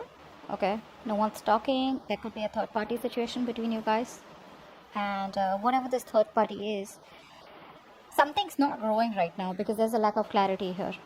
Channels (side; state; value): both; identical; correlation 1.00